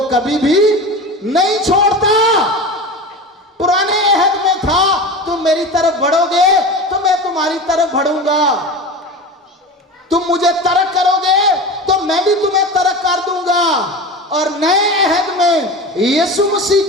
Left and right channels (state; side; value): normal; both; correlation 0.29